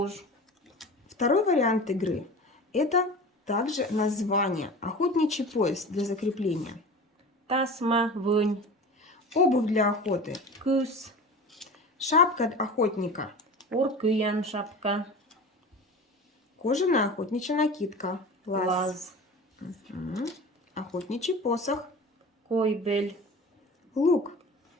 Второй вариант игры – это также название. Охотничий пояс для закрепления. тасма, вынь, Обувь для охоты. кыс, Шапка охотника. уркыян шапка, Кожаная охотничья накидка. Лаз. лаз, Мгм. Охотничий посох. койбель, Лук.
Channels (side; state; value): both; normal; correlation 0.35